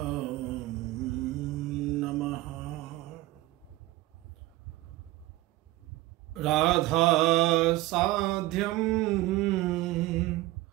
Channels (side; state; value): left; quieter; 17.7 dB